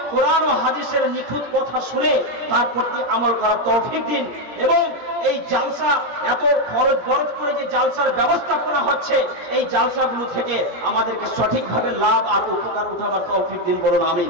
কোরআন ও হাদিসের নিখুঁত কথা শুনে তার প্রতি আমল করার তৌফিক দিন, এবং এই জালসা এত খরচ বরচ করে যে জালসার ব্যবস্থাপনা হচ্ছে, এই জালসাগুলো থেকে আমাদেরকে সঠিকভাবে লাভ আর উপকার উঠাবার তৌফিক দিন, বলুন আমিন।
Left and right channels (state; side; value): late; left; 17 ms